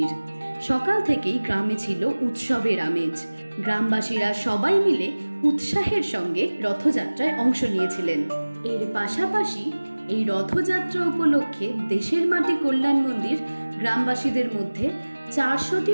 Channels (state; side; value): inverted; both; correlation -1.00